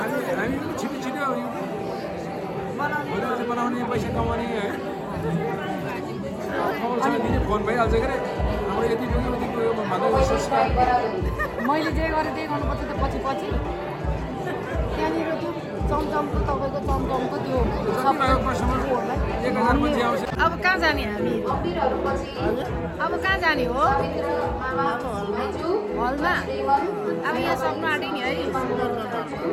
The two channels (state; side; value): identical; both; correlation 1.00